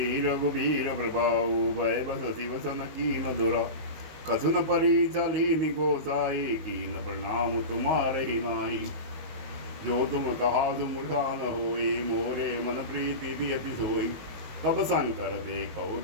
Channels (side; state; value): left; late; 19 ms